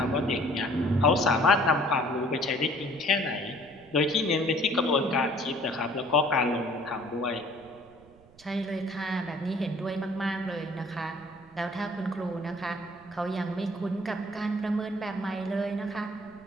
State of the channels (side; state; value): right; noise; rumble, 27 dB below the sound